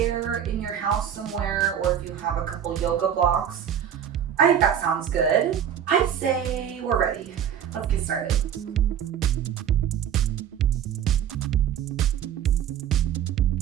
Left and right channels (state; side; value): quieter; left; 9.1 dB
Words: in your house somewhere, or if you have a couple yoga blocks. I think that sounds good. I'd say we're ready. Let's get started.